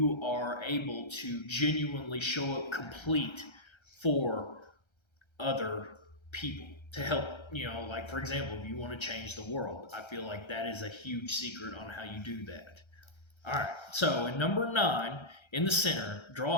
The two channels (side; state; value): right; late; 1.3 ms